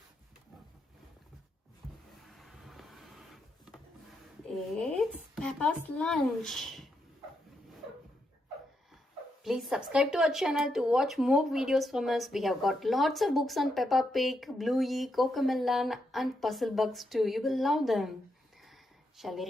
It's Peppa's Lunch. Please subscribe to our channel to watch more videos from us. We have got lots of books on Peppa Pig, Bluey, Cocomelon and puzzle books too. You will love them. Shall we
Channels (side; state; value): both; normal; correlation 0.81